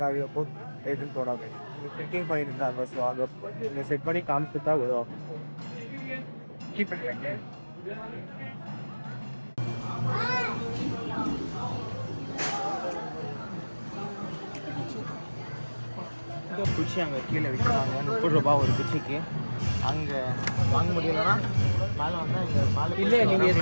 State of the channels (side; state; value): both; inverted; correlation -1.00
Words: காவியை போட்டு எடுத்துன்னு போடாங்க. செட்டிங் பண்ணியிருந்தாங்க. ஸோ அங்கே செட் பண்ணி காமிச்சு தான் விடுவோம். கீப் பண்ணுறேங்க. குச்சி அங்கே கீழே விற்கிறாங்க. 30 ரூபா ஒரு குச்சிக்கு. அங்கே வாங்க முடியலன்னா மேலே வந்தால் இங்கே மேலே. இல்லை நீங்கள்